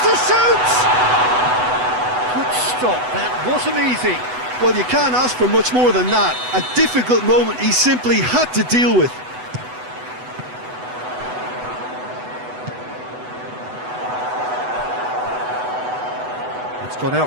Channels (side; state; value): left; late; 8.0 ms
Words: to shoot! Good stop, that wasn't easy. Well, you can't ask for much more than that. A difficult moment he simply had to deal with. It's gone